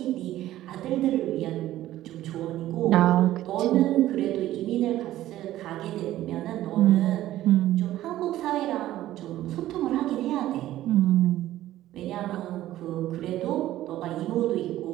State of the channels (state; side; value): quieter; left; 14.2 dB